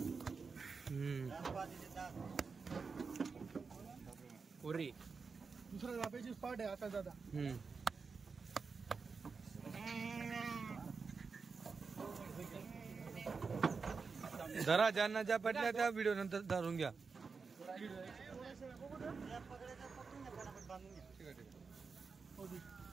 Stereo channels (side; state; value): left; quieter; 4.9 dB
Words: पुरी दुसऱ्या जापेची स्पॉट आहे आता दादा जरा ज्यांना ज्या पटल्या त्या व्हिडिओ नंतर धरून घ्या